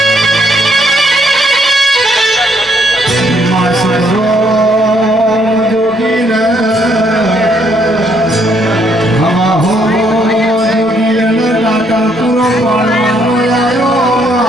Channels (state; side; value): normal; both; correlation 0.70